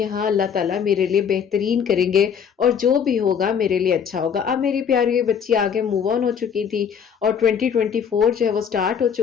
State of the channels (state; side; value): quieter; right; 7.4 dB